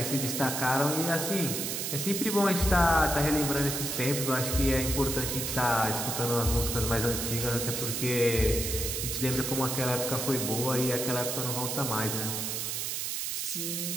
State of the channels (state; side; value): noise; right; hiss, 2 dB below the sound